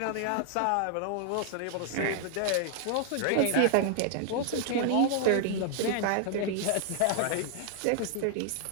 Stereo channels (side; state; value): both; different; correlation 0.00